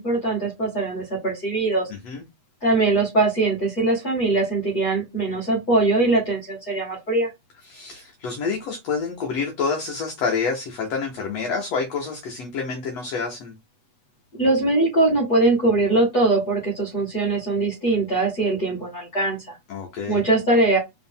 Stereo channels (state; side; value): late; right; 8.2 ms